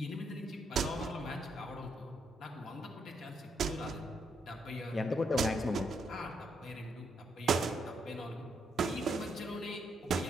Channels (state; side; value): normal; both; correlation 0.77